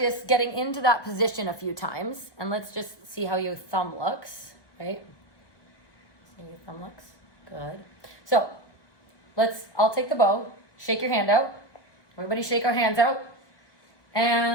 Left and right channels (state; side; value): late; right; 1.2 ms